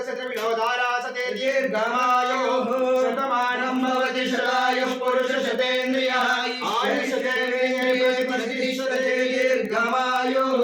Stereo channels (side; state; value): both; identical; correlation 1.00